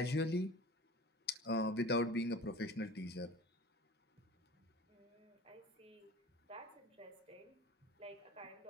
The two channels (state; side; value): normal; both; correlation 0.39